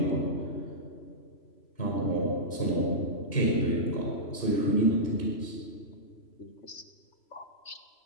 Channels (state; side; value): late; right; 3.0 ms